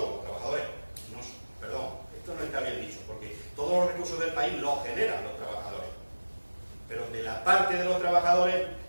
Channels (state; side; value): inverted; both; correlation -1.00